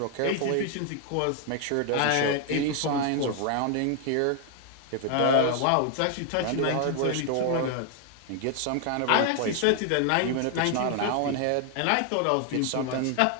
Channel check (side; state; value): both; different; correlation 0.00